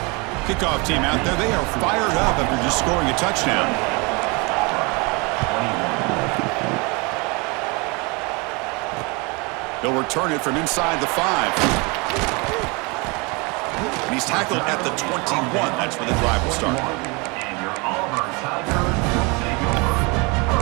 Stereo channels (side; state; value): left; quieter; 28.6 dB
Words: Kickoff team out there. They are fired up after just scoring a touchdown. They'll return it from inside the 5. And he's tackled at the 21. That's where the drive will start. And your Auburn Tigers will take over